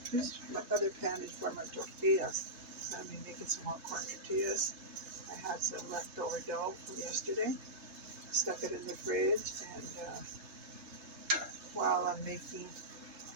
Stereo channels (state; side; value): late; left; 3.3 ms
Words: My other pan is for my tortillas. So I'm making some more corn tortillas. I had some leftover dough from yesterday. Stuck it in the fridge, and while I'm